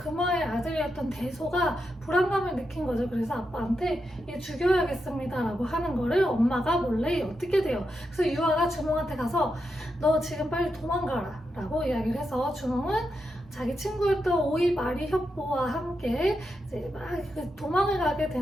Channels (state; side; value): normal; both; correlation 0.85